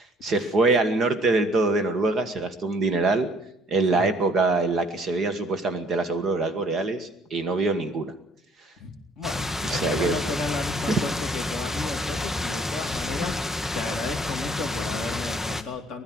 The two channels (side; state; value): both; normal; correlation 0.59